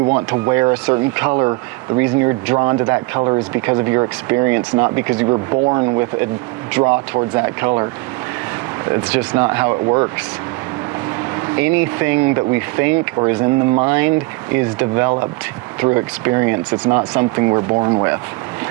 want to wear a certain color, the reason you're drawn to that color is because of your experience, not because you were born with a draw towards that color. It's just not how it works. Anything that we think or is in the mind is developed through experience. It's not something we're born with.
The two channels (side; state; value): left; quieter; 24.4 dB